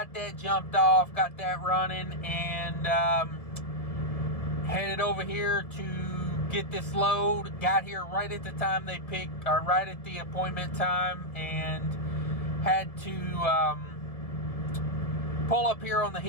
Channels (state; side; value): late; right; 1.7 ms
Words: that jumped off, got that running, and headed over here to get this load. Got here right at the time they picked, or right at the appointment time, and had to pull up here on the